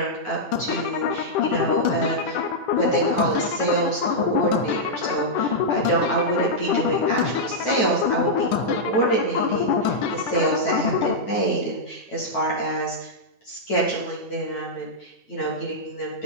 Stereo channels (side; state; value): right; late; 9.2 ms